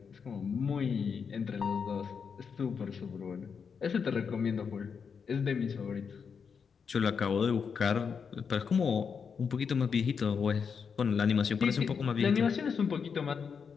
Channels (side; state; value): right; quieter; 6.2 dB